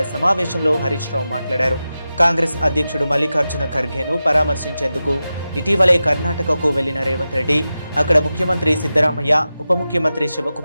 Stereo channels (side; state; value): both; inverted; correlation -0.93